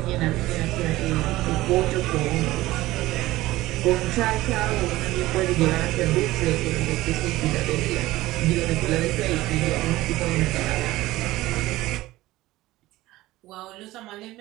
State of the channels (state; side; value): quieter; left; 17.4 dB